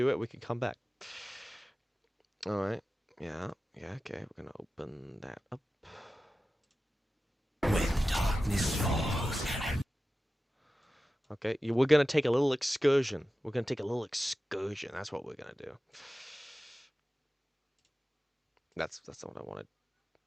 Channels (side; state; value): both; normal; correlation 0.94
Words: it. We can come back. All right. Yeah. Okay. We're gonna open that up. When darkness falls. Okay. We're gonna take a little excursion. That's what we're gonna do. That's not what I wanted.